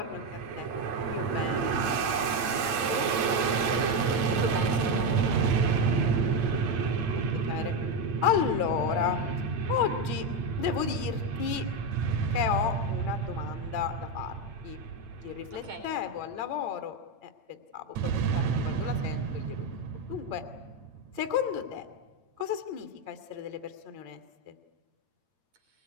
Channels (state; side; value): late; left; 8.8 ms